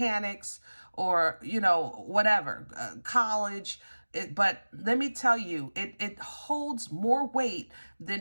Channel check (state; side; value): inverted; both; correlation -1.00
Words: or, you know, whatever, college. But let me tell you, it holds more weight